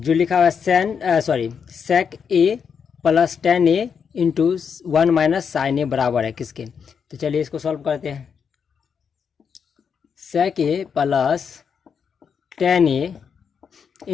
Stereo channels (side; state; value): right; quieter; 6.7 dB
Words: लिखा हुआ है सेक ए प्लस टेन ए इंटू 1 माइनस साइन ए बराबर है किसके। तो चलिए इसको सॉल्व करते हैं। सेक ए plus ten A